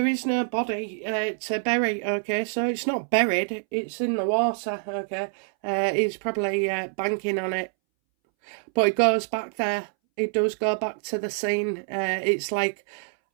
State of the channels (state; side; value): silent; left; 61 dB below the other